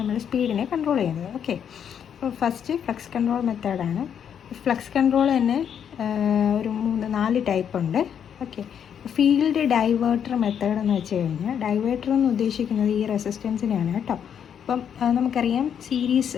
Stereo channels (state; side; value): quieter; right; 8.4 dB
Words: സ്പീഡിനെ കൺട്രോൾ ചെയ്യുന്നത്. ഓക്കെ, അപ്പോൾ ഫസ്റ്റ് ഫ്ലക്സ് കൺട്രോൾ മെത്തേഡാണ്. ഫ്ലക്സ് കൺട്രോൾ തന്നെ ഒരു 3-4 ടൈപ്പ് ഉണ്ട്. ഓക്കെ, ഫീൽഡ് ഡൈവേർട്ടർ മെത്തേഡ് എന്ന് വെച്ച് കഴിഞ്ഞാൽ, ഡൈവേർട്ടർ എന്ന് ഉദ്ദേശിക്കുന്നത് ഈ റെസിസ്റ്റൻസിനെയാണ് കേട്ടോ. അപ്പം നമുക്കറിയാം